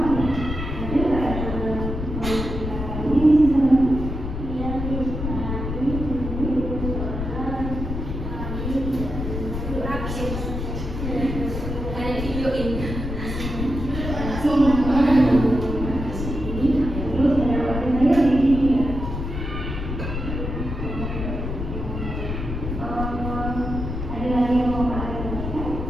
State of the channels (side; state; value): left; noise; rumble, 5 dB below the sound